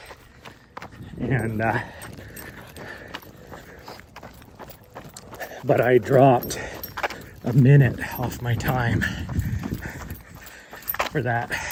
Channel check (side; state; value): both; identical; correlation 1.00